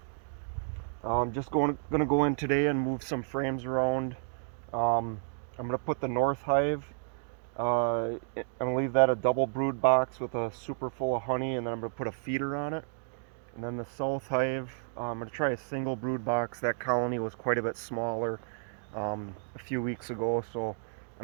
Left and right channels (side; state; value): left; silent; digital silence